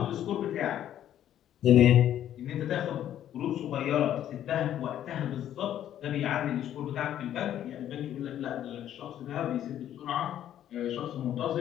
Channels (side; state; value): right; quieter; 11.2 dB